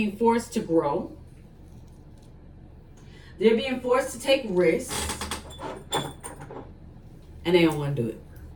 forced to grow. They're being forced to take risks. And they don't want to do it.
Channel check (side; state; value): both; identical; correlation 1.00